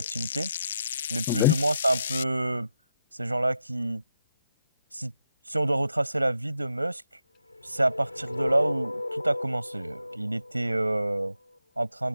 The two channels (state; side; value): inverted; both; correlation -0.83